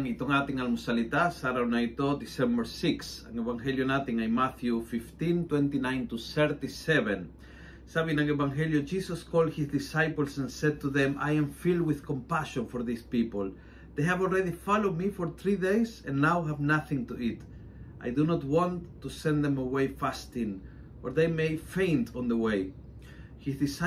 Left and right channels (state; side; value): identical; both; correlation 1.00